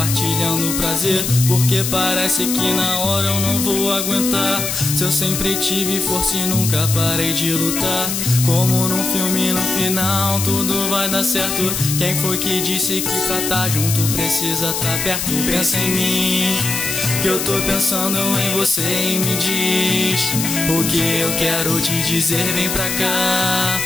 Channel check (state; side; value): noise; left; hiss, 2 dB below the sound